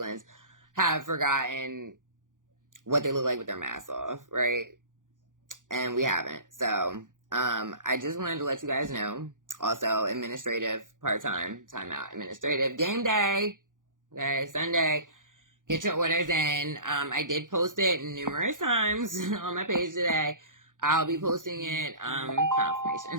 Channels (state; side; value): late; left; 0.88 ms